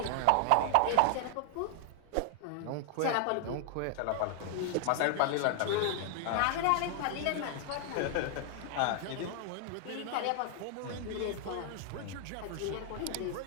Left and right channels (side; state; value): both; different; correlation 0.00